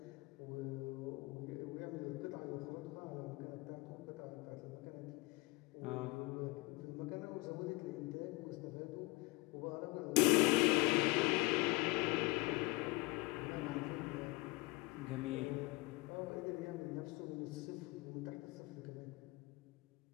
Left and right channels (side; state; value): right; quieter; 25.4 dB